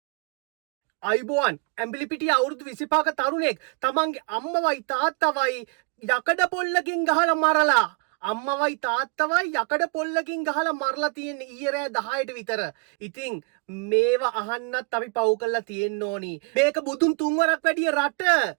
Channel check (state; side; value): quieter; left; 35.5 dB